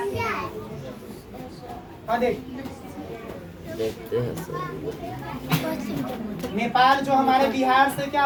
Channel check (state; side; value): identical; both; correlation 1.00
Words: हाँ देख, देखते हैं सर। नेपाल जो हमारे बिहार से क्या